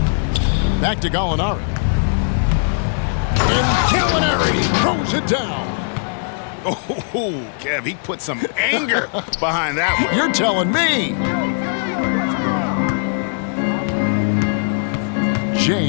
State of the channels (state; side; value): silent; right; digital silence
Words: Back to Gallinari. And Gallinari throws it down. Oh, Kev, he put some anger behind that one. You're telling me.